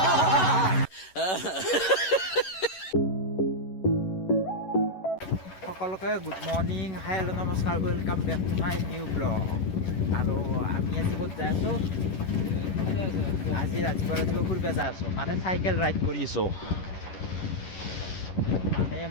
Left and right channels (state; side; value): late; right; 11 ms